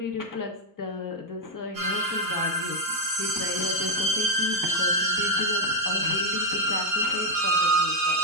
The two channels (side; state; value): left; late; 2.3 ms